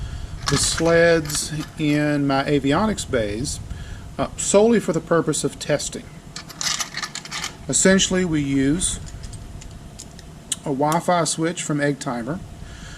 the sleds in my avionics bays solely for the purpose of testing. Essentially, we use a Wi-Fi switch from EggTimer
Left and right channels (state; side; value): identical; both; correlation 1.00